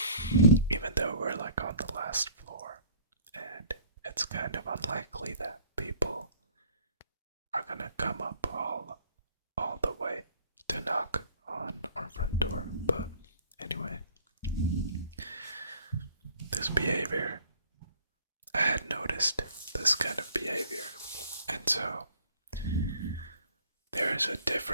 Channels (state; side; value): inverted; both; correlation -0.54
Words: even though we're like on the last floor, and it's kind of unlikely that people are gonna come up all the way to knock on our front door. But anyway, this behavior, I had noticed this kind of behavior, and so there is a